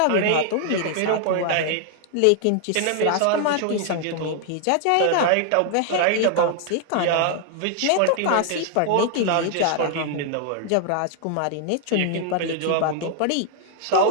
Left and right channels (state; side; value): different; both; correlation 0.00